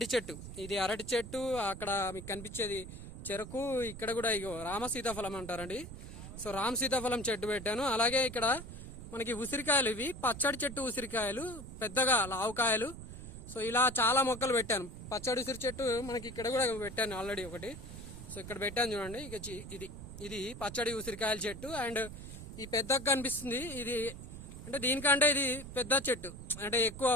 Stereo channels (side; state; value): right; noise; rumble, 11 dB below the sound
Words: చెట్టు. ఇది అరటి చెట్టు. అక్కడ మీకు కనిపించేది చెరకు. ఇక్కడ కూడా ఇగో రామ సీతాఫలం అంటారండి. సో రామ సీతాఫలం చెట్టు పెట్టాను. అలాగే ఇక్కడ మనకి ఉసిరికాయలు, ఇవి పచ్చడి చెట్టు ఉసిరికాయలు, పెద్దగా లావుకాయలు. సో ఇలా చాలా మొక్కలు పెట్టాను. పచ్చడి ఉసిరి చెట్టు మనకి ఇక్కడ కూడా పెట్టాను ఆల్రెడీ ఒకటి. సో ఇక్కడ పెట్టాను చూడండి. ఇక ఇది పచ్చడి ఉసిరికాయల చెట్టు. అండ్ ఈ పెద్దగా కనిపిస్తుంది, ఇది అంటే దీనికంటే ఇది పెద్ద చెట్టు, అంటే ఎక్కువ